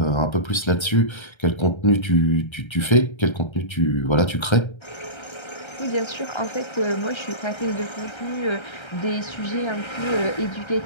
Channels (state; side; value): late; right; 1.3 ms